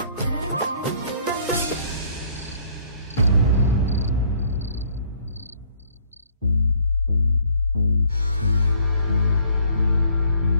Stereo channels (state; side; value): inverted; both; correlation -0.61